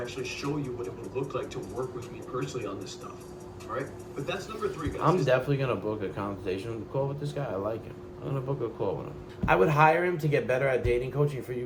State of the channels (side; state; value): both; identical; correlation 1.00